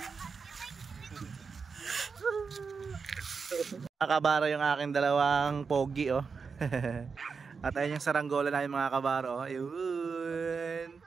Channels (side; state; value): left; quieter; 5.3 dB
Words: Mga kabaro, yung aking dalawang pogi oh. At ayun yung saranggola na yung mga kabaro oh. Ayun,